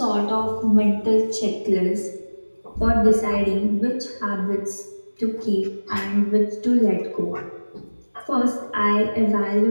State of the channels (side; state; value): both; inverted; correlation -1.00